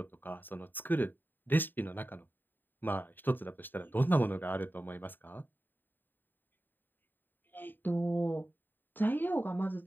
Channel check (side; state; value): right; late; 0.092 ms